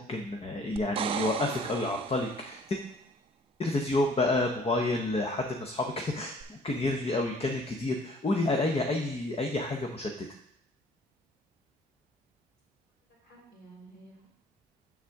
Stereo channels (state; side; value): normal; both; correlation 0.55